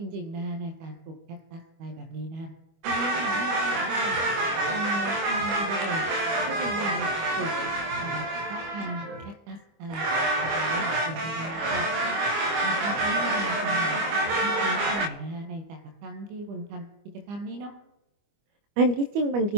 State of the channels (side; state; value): left; late; 25 ms